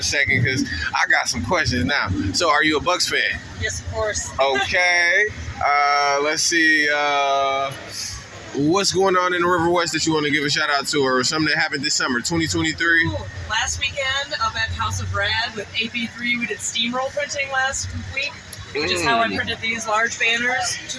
second because I got some questions now. So are you a Bucks fan? Yes, of course. Okay. Let's see. What's going on in the River West that you want to give a shout out to, or something that happened this summer, 2023? Ooh, last weekend up at House of Rad with AP3, we did steamroll printing last week, which is how I printed these large banners, 2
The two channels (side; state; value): both; identical; correlation 1.00